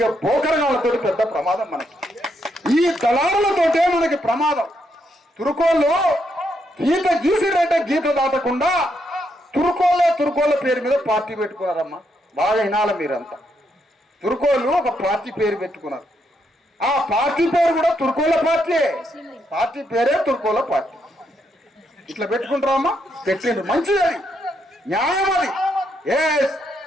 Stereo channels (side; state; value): both; normal; correlation 0.78